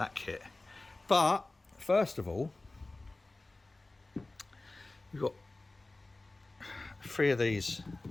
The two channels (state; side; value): quieter; right; 3.0 dB